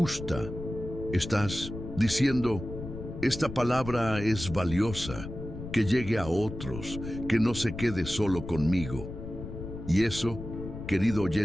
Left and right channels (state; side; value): noise; left; rumble, 9 dB below the sound